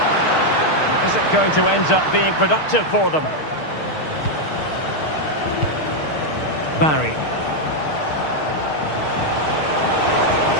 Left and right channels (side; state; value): right; late; 6.5 ms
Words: Is it going to end up being productive for them? Barry.